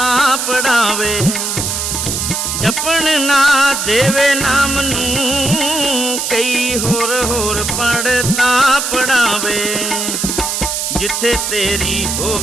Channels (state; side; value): noise; right; hiss, 2 dB below the sound